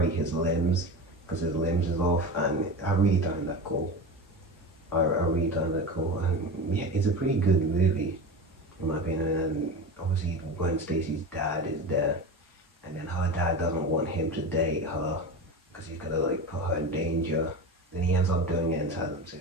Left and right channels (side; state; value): both; normal; correlation 0.27